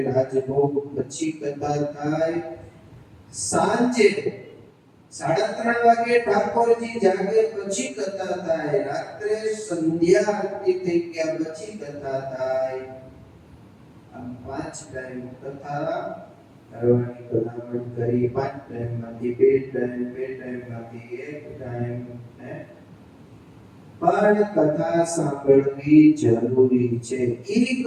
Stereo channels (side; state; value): both; identical; correlation 1.00